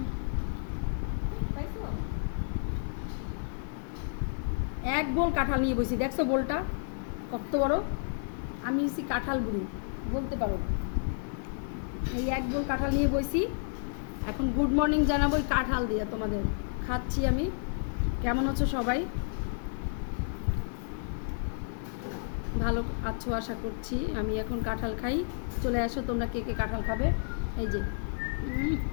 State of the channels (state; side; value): silent; right; digital silence